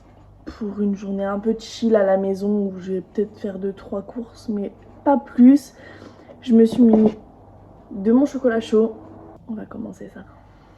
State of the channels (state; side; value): identical; both; correlation 1.00